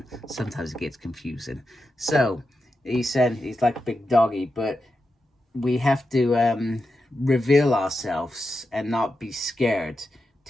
Sometimes it gets confusing. So he said he's like a big doggy, but we have to reveal ourselves and not be scared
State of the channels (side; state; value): both; normal; correlation 0.89